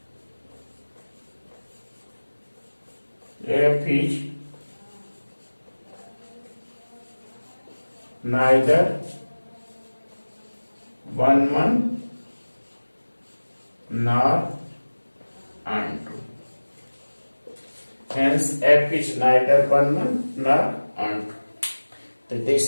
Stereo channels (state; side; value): inverted; both; correlation -1.00